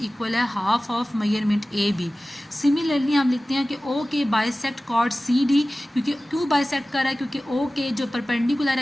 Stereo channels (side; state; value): both; normal; correlation 0.97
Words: इक्वल है half of measurement A B. Similarly हम लिखते हैं कि ओ के बाइसेक्ट कॉर्ड सी डी, क्योंकि क्यों बाइसेक्ट कर रहा है, क्योंकि ओ के जो परपेंडिकुलर